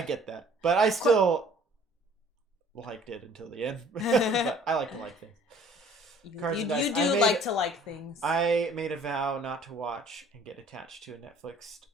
get that, but I still liked it until the end. But I like to like things. You do like to like things. I made a vow not to watch and get attached to a Netflix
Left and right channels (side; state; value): both; normal; correlation 0.54